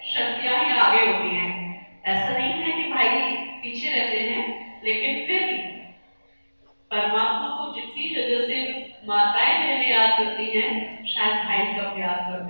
शक्तियां ही आगे होती हैं। ऐसा नहीं है कि भाई पीछे रहते हैं, लेकिन फिर भी परमात्मा को जितनी जगह से माताएं बहनें याद करती हैं, शायद भाई कब याद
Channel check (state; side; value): inverted; both; correlation -1.00